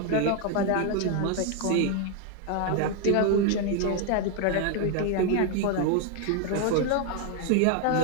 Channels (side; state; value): both; different; correlation 0.01